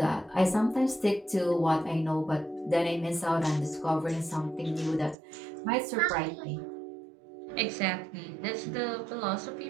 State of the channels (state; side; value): drops out; left; at 5.2 s